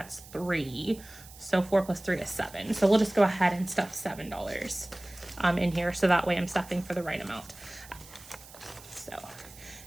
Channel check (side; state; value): right; noise; hiss, 19 dB below the sound